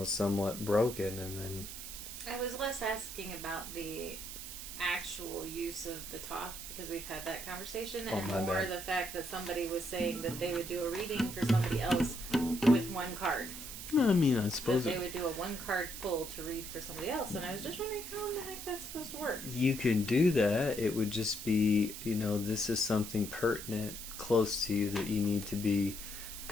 somewhat broken. And then I was less asking about the actual use of the Thoth, because we've had that conversation, Oh, and my more bad. the fact that somebody was saying that they would do a reading for somebody else with one card. I mean, I That suppose they would do a one card pull to read for somebody else, and I was just wondering how in the heck that's supposed to work. you can do that. It would just be, this is something pertinent, close to you, that you need to be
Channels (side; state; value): right; noise; hiss, 9 dB below the sound